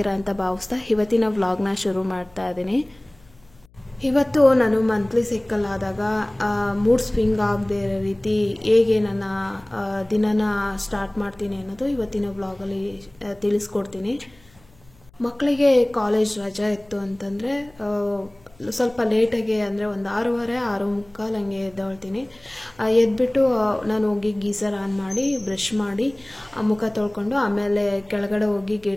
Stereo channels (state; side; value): noise; left; hum, 29 dB below the sound